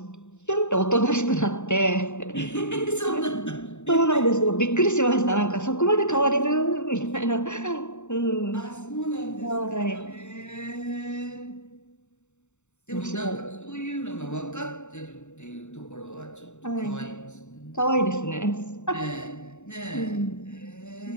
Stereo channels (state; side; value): late; right; 0.83 ms